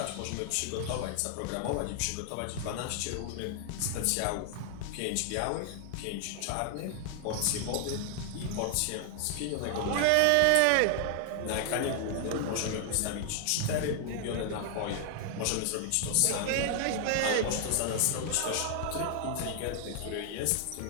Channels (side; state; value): both; different; correlation 0.00